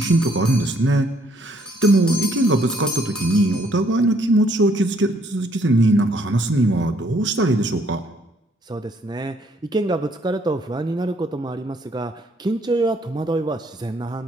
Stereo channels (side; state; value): both; normal; correlation 0.66